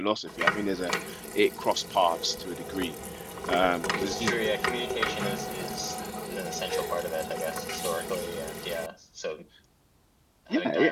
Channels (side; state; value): both; identical; correlation 1.00